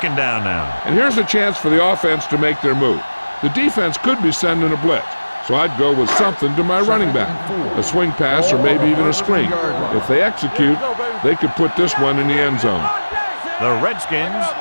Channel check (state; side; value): inverted; both; correlation -1.00